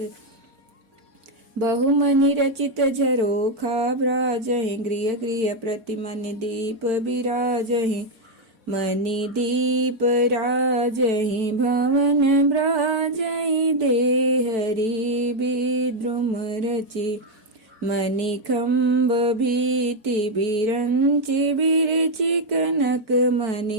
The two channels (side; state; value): left; late; 4.5 ms